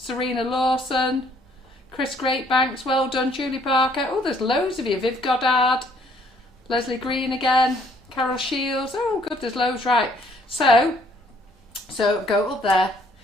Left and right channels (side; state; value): both; normal; correlation 0.64